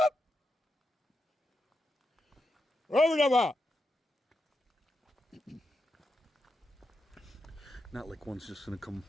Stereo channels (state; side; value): normal; both; correlation 0.86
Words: Not like one's just gonna come